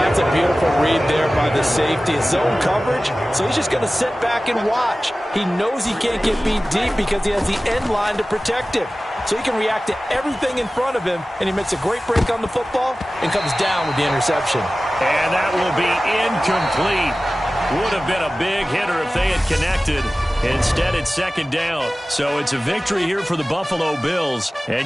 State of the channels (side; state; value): both; normal; correlation 0.96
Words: That's a beautiful read there by the safety. Zone coverage, so he's just going to sit back and watch. He knows he can't get beat deep because he has the end line to protect him. So he can react to everything in front of him, and he makes a great break on the football and comes down with the interception. And that will be incomplete. Would have been a big hitter if they had connected. Instead, it's 2nd down. So it's a victory here for the Buffalo Bills.